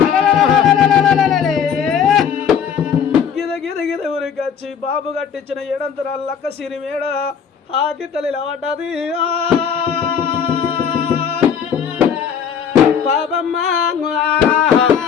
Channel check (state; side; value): quieter; right; 7.5 dB